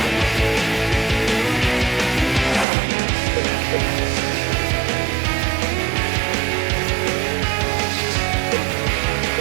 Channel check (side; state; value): left; drops out; at 2.7 s